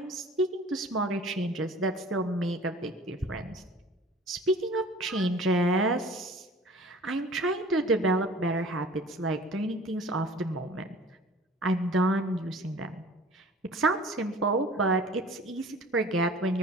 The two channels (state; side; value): normal; both; correlation 0.46